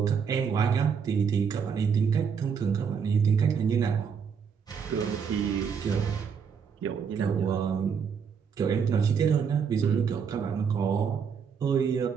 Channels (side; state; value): left; quieter; 6.6 dB